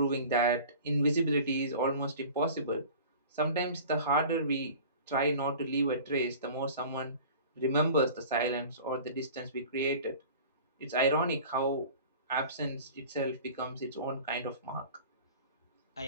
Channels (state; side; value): inverted; both; correlation -0.41